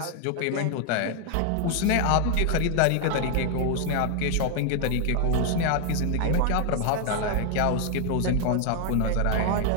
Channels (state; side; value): different; both; correlation 0.00